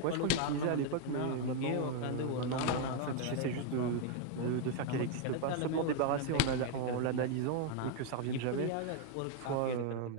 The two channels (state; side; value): different; both; correlation 0.00